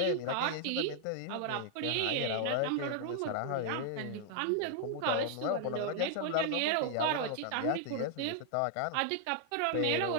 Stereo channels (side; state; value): both; different; correlation 0.00